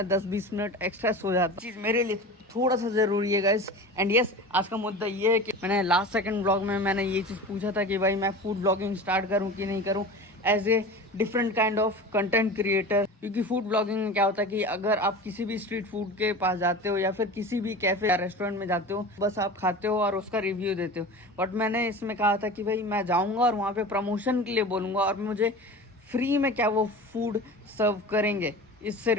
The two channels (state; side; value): normal; both; correlation 0.34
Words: 10-20 मिनट एक्स्ट्रा सो जाता हूँ। चीज़ मेरे लिए थोड़ा सा ज़रूरी है गाइस। एंड यस, आज का मुद्दा ये है कि मैंने लास्ट सेकंड ब्लॉग में मैंने ये चीज़ पूछा था कि भाई मैं फूड ब्लॉगिंग स्टार्ट करूं कि नहीं करूं as a different kind of content creator. क्योंकि फूड ब्लॉगिंग में क्या होता है कि अगर आप किसी भी स्ट्रीट फूड के पास जाते हो या फिर किसी भी कैफे या रेस्टोरेंट में जाते हो, बस आप खाते हो और उसका रिव्यू देते हो। बट मैंने इसमें कहा था कि भाई मैं जाऊँगा और वहाँ पर प्रमोशन के लिए बोलूँगा और मुझे फ्री में क्या वो फूड सर्व करेंगे। इससे